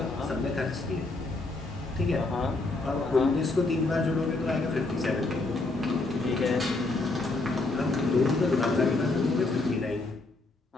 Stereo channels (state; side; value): quieter; right; 3.2 dB